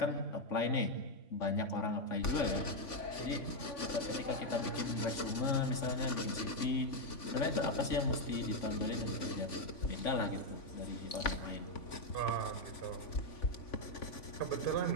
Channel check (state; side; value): late; right; 3.5 ms